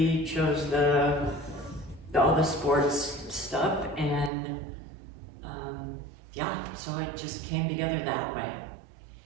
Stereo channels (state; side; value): drops out; left; at 4.3 s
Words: chose all the sports stuff, and yeah, so it just came together that way.